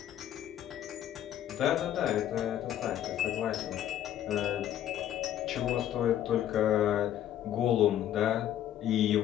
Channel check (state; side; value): quieter; right; 11.4 dB